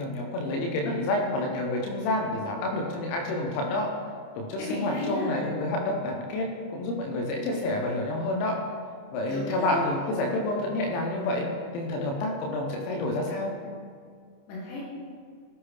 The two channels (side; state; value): right; late; 29 ms